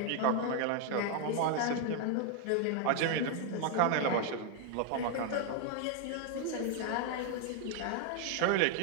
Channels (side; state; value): both; different; correlation 0.00